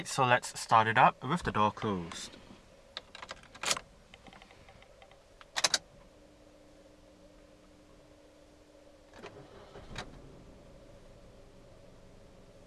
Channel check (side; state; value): both; identical; correlation 1.00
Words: so let's start it up with the door closed.